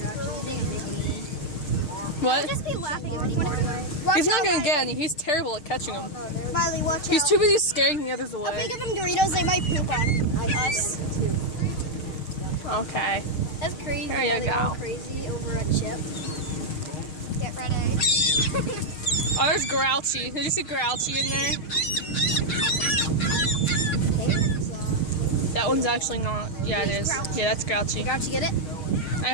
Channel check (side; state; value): right; late; 6.5 ms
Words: What? Just be laughing at me. He's not gonna get any. He's terrible at catching them. Riley, watch He's out. too busy scaring the others If we away. give them Doritos, they might poop on us. Okay. That's crazy. There you They go. all crazy over a chip. Get ready. Oh, there's Grouchy. Did you see Grouchy in there? That one's actually not. Yeah, it is. Yeah, that's Grouchy. Did Grouchy get it? I